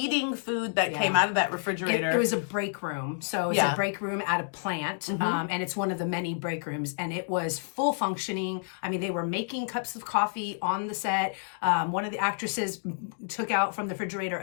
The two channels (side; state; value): right; silent; digital silence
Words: food that came out of that refrigerator. It was a break room. So it's a break room at a plant, and it's one of the many break rooms, and it was full functioning. I mean, they were making cups of coffee on the set. One of the actresses took out from the refrigerator